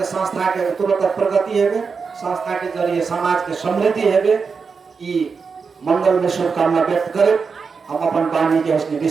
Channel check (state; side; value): quieter; left; 5.3 dB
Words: संस्था के तुरंत प्रगति हेबे, संस्था के जरिए समाज के समृद्धि हेबे, ई मंगल में शुभकामना व्यक्त करे हम अपन वाणी के उसने